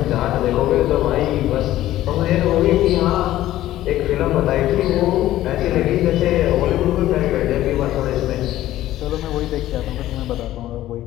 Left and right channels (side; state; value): right; quieter; 14.3 dB